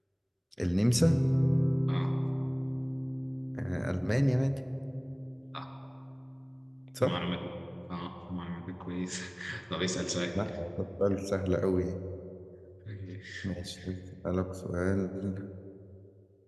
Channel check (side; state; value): both; identical; correlation 1.00